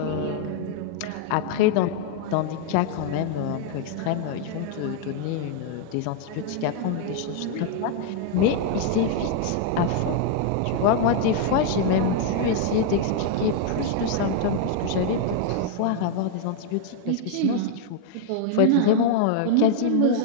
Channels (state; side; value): different; both; correlation 0.00